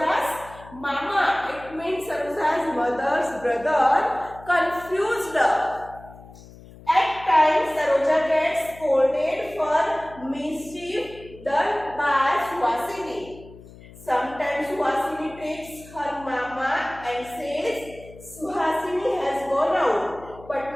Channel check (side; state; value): left; noise; hum, 20 dB below the sound